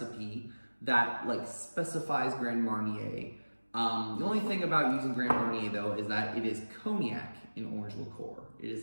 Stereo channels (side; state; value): both; inverted; correlation -1.00